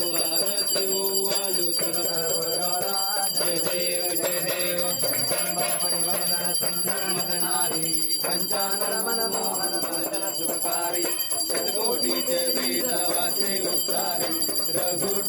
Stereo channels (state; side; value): identical; both; correlation 1.00